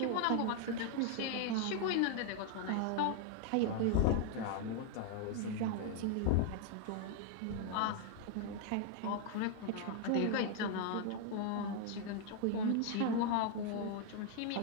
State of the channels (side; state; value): both; different; correlation 0.00